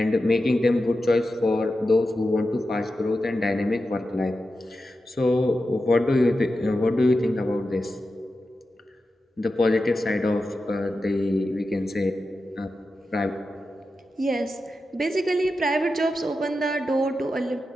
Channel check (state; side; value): normal; both; correlation 0.91